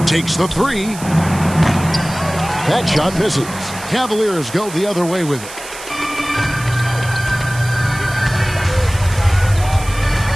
Takes the 3. That shot misses. Cavaliers go the other way with it.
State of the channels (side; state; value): right; noise; hiss, 14 dB below the sound